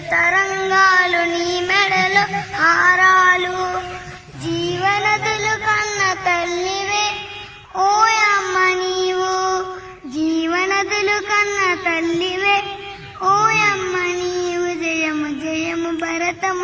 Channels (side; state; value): both; identical; correlation 1.00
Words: తరంగాలు నీ మెడలు హారాలు. జీవనదులు కన్న తల్లివే ఓయమ్మ నీవు, జీవనదులు కన్న తల్లివే ఓయమ్మ నీవు. జయము జయము